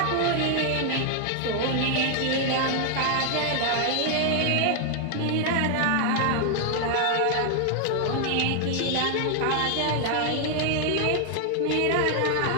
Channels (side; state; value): both; different; correlation 0.00